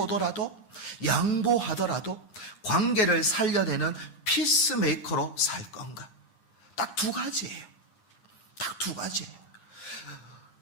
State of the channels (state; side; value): late; right; 9.9 ms